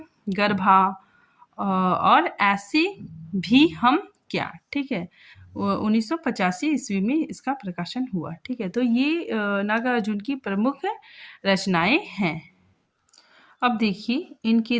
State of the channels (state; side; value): identical; both; correlation 1.00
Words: गर्भा, और ऐसी भी हम क्या। ठीक है, 1985 ईस्वी में इसका प्रकाशन हुआ। ठीक है, तो ये नागार्जुन की प्रमुख रचनाएं हैं। अब देखिए इनके